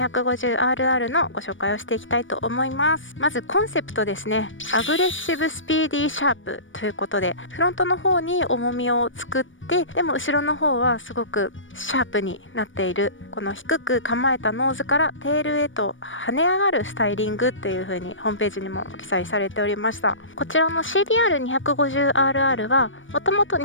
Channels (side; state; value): right; late; 0.56 ms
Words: のご紹介をしていきたいと思います。まずコンセプトですね。アグレッシブスピーディーシャープということで、フロントの方に重みを作ってでも後ろの方はすごくシャープになっている、この低く構えたノーズからテールへと跳ね上がるスタイリングという風にホームページにも記載されておりました。こちらの CBR250RR はもともと